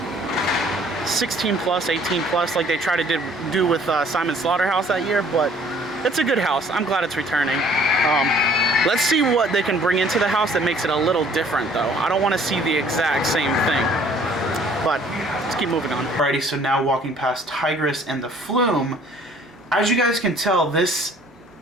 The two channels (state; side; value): normal; both; correlation 0.57